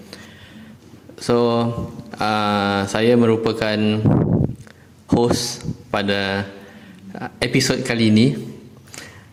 So, saya merupakan host pada episod kali ini.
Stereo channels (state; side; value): identical; both; correlation 1.00